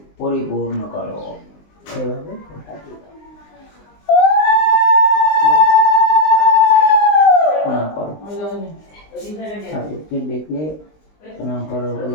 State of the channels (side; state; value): right; late; 19 ms